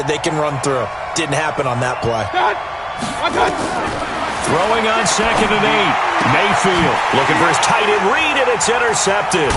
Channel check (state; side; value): identical; both; correlation 1.00